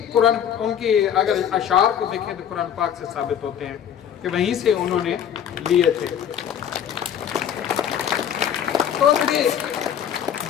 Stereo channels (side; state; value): right; quieter; 9.2 dB